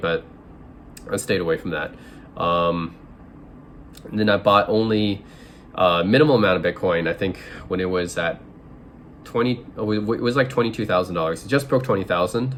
I stayed away from that. And then I bought only minimal amount of Bitcoin. I think when it was at it was like $22,000. It just broke 20,000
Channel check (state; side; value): identical; both; correlation 1.00